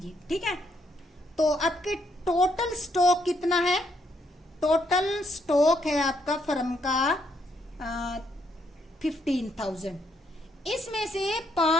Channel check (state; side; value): normal; both; correlation 0.74